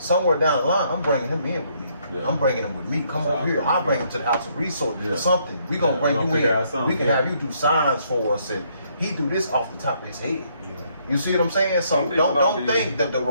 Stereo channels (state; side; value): inverted; both; correlation -0.70